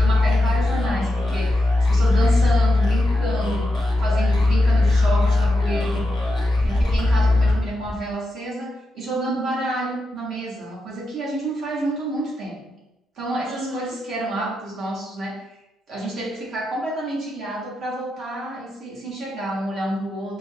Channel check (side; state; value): both; normal; correlation 0.88